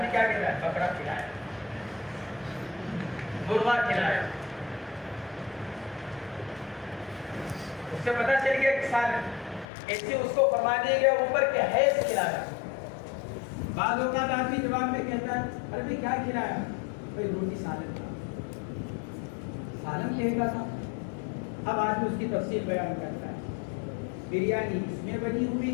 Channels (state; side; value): drops out; right; at 9.7 s